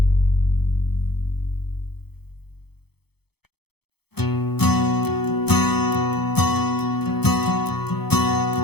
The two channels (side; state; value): right; late; 0.97 ms